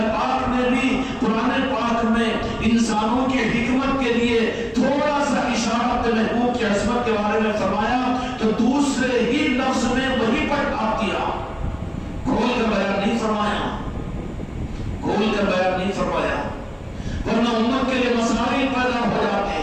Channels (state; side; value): identical; both; correlation 1.00